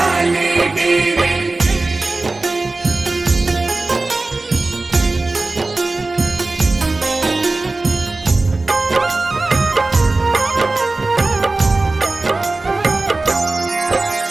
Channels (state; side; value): quieter; left; 3.2 dB